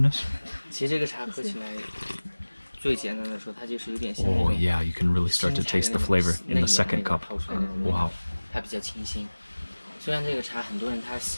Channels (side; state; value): both; inverted; correlation -1.00